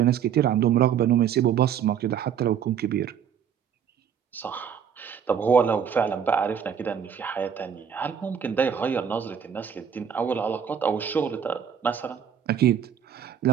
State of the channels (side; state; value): left; quieter; 8.1 dB